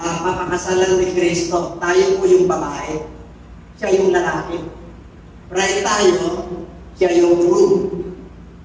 ni Kristo. Tayo po yung babae. Siya yung lalaki. Bride tayo, siya yung groom.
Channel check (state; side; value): identical; both; correlation 1.00